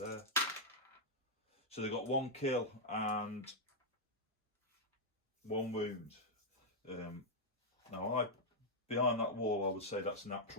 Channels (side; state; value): both; normal; correlation -0.03